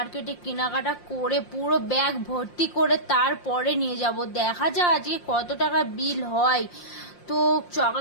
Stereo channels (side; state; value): right; late; 5.7 ms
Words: কেনাকাটা করে পুরো ব্যাগ ভর্তি করে তারপরে নিয়ে যাব। দেখা যাক আজকে কত টাকা বিল হয়। তো